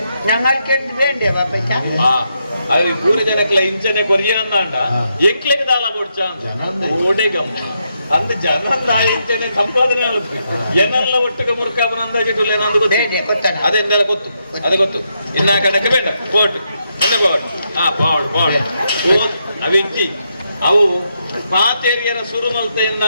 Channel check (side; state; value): both; inverted; correlation -0.81